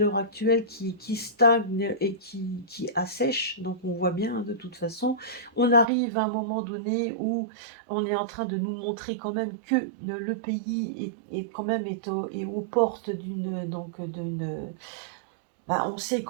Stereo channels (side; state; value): left; drops out; at 5.9 s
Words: actuelle qui stagne et qui assèche. Donc on voit bien, hein, de toute façon, on arrive à un moment donné où on est en train de nous montrer quand même que le pays est quand même est aux portes d'une, bah, on sait